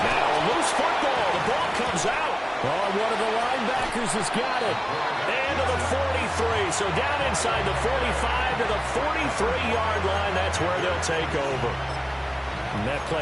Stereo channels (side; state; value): both; identical; correlation 1.00